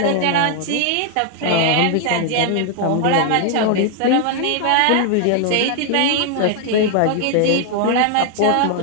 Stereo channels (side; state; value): both; different; correlation 0.00